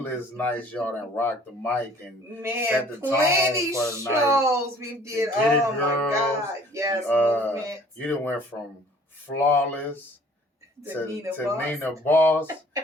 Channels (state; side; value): normal; both; correlation 0.54